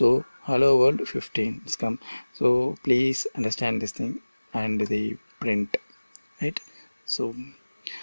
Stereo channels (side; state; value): both; inverted; correlation -1.00